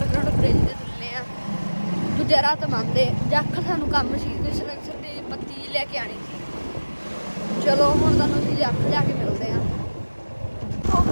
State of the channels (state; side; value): inverted; both; correlation -1.00